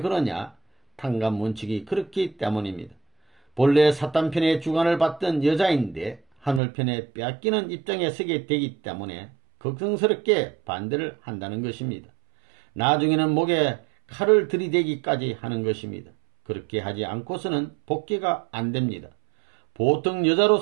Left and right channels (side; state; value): left; drops out; at 6.6 s